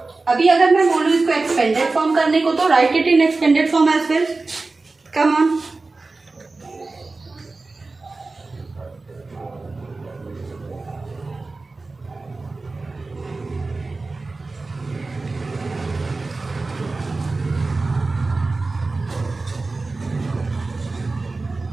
अभी अगर मैं बोलूँ इसको एक्सपेंडेड फॉर्म करने को, तो write it in expanded form as well. Come on.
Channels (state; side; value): quieter; left; 3.6 dB